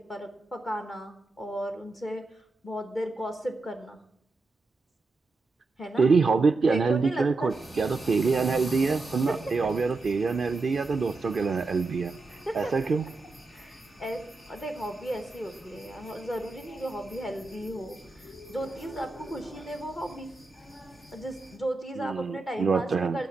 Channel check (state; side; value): quieter; left; 3.6 dB